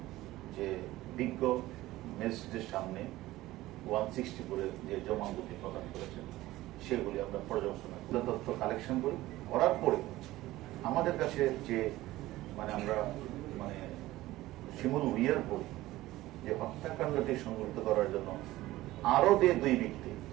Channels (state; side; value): quieter; left; 16.9 dB